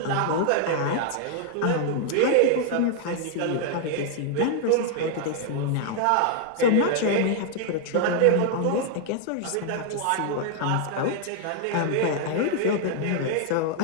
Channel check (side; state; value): both; different; correlation 0.00